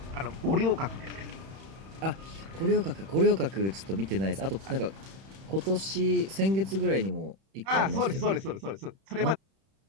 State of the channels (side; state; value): left; late; 31 ms